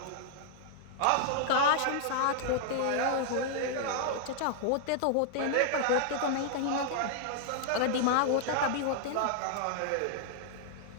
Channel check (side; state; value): both; different; correlation 0.00